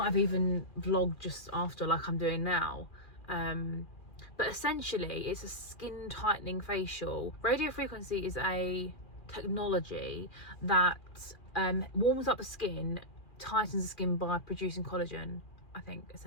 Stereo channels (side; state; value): right; late; 2.4 ms